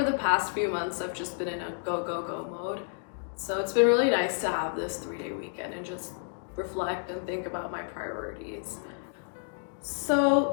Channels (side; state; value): right; silent; digital silence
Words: the past few months I've just been in a go, go, go mode. So it's been really nice to have this 3-day weekend and just reflect and think about my priorities.